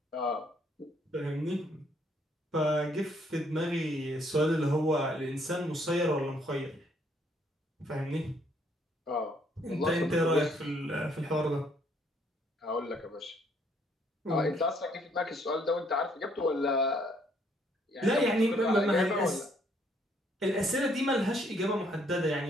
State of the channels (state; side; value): normal; both; correlation 0.67